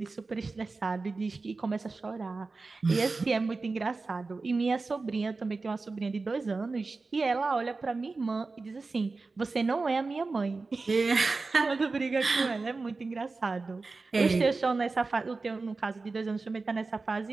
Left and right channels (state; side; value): quieter; left; 3.9 dB